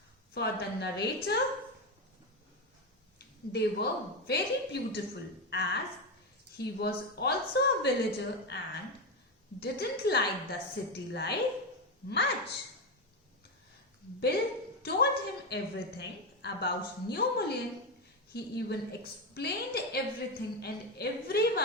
For the narrator, they were very beautiful, as he was also a villager and didn't like the city life much. Bill told him everything about New Mullion. He even explained everything and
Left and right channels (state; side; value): normal; both; correlation 0.12